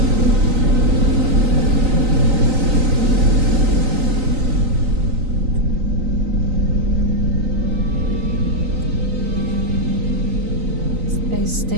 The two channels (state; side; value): late; left; 3.9 ms